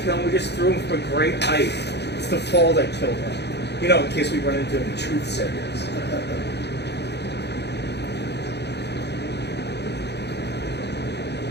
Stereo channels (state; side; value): late; right; 0.49 ms